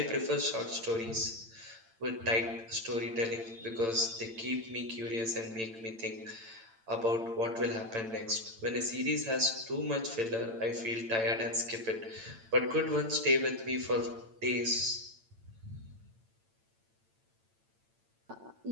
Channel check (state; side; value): late; left; 8.9 ms